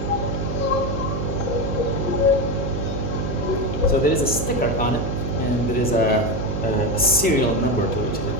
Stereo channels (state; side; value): noise; right; hum, 3 dB below the sound